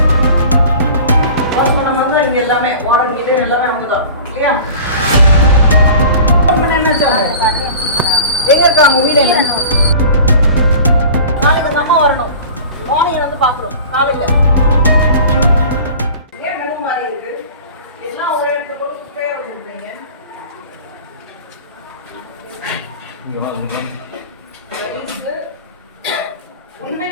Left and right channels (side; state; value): both; inverted; correlation -0.40